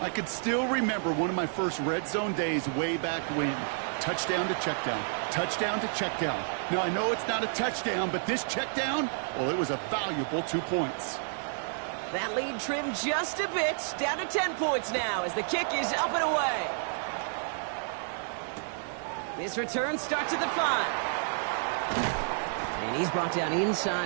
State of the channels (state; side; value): silent; left; 58 dB below the other